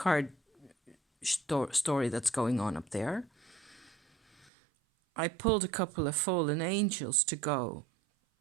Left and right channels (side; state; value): left; drops out; at 4.5 s